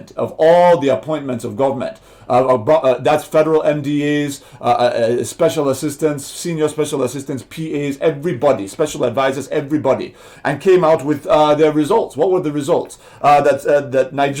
of all the appointments of government. That's federal MDAs, special assistants, senior special assistants, PAs, everybody, special advisors, everybody, and came out with their results. What were the results? That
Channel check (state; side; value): identical; both; correlation 1.00